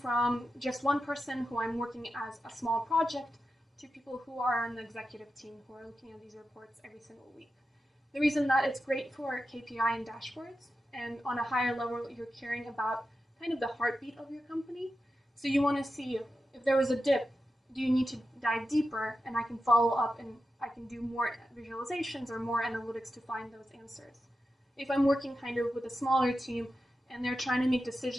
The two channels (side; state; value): both; normal; correlation 0.90